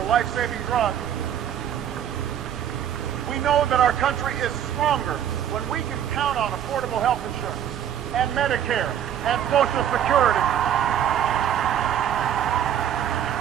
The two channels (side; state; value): left; quieter; 9.9 dB